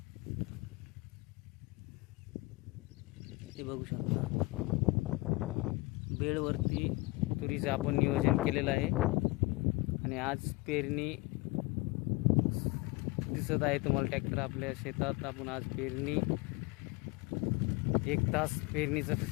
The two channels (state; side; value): quieter; right; 23.6 dB